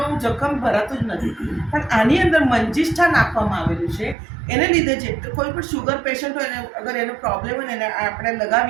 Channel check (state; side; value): drops out; left; at 4.2 s